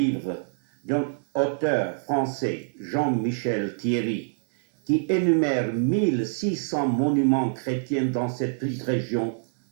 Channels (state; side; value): silent; left; digital silence